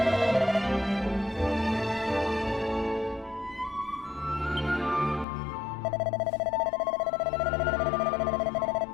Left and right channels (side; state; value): right; drops out; at 5.2 s